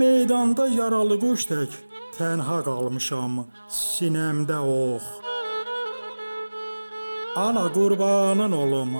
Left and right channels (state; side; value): inverted; both; correlation -1.00